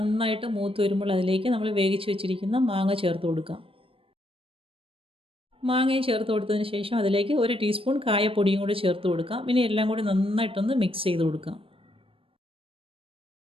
മൂത്ത് വരുമ്പോൾ അതിലേക്ക് നമ്മൾ വേവിച്ച് വെച്ചിരിക്കുന്ന മാങ്ങ ചേർത്ത് കൊടുക്കാം. മാങ്ങയും ചേർത്ത് കൊടുത്തതിന് ശേഷം അതിലേക്ക് 1 ടീസ്പൂൺ കായപ്പൊടിയും കൂടി ചേർത്ത് കൊടുക്കാം. ഇനി എല്ലാം കൂടി നന്നായിട്ടൊന്ന് മിക്സ് ചെയ്ത് കൊടുക്കാം.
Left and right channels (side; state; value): left; late; 0.26 ms